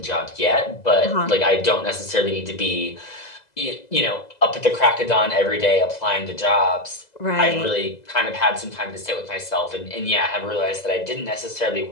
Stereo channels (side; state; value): right; late; 2.0 ms